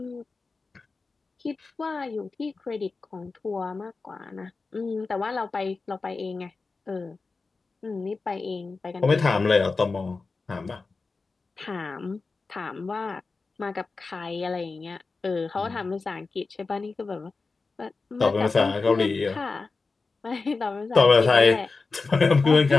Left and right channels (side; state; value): right; quieter; 4.1 dB